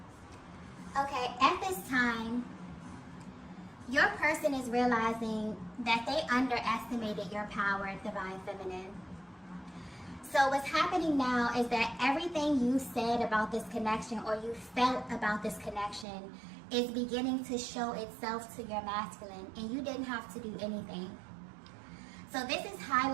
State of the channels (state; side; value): drops out; left; at 16.1 s